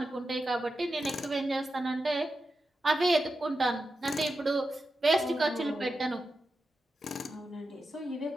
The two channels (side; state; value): both; normal; correlation 0.90